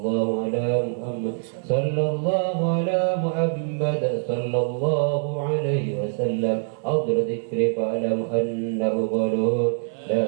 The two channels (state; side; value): silent; left; 63 dB below the other